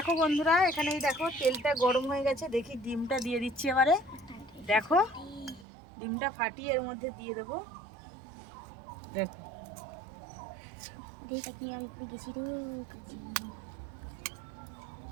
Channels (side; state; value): left; drops out; at 5.7 s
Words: বন্ধুরা, এখানেই দেখো তেলটা গরম হয়ে গেছে। দেখি ডিমটা দিয়ে দিচ্ছি এবারে। দেখো ডিমটা ফাটিয়ে এর মধ্যে দিয়ে দেবো। দেখো